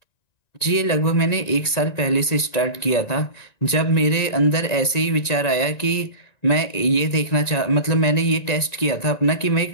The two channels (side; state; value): right; late; 1.9 ms